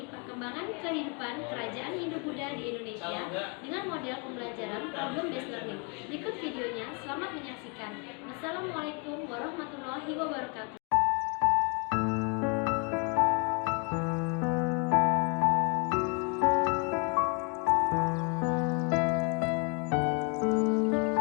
perkembangan kehidupan kerajaan Hindu-Buddha di Indonesia dengan model pembelajaran problem-based learning. Berikut videonya, selamat menyaksikan. Wassalamualaikum warahmatullahi wabarakatuh.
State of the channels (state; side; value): quieter; right; 34.3 dB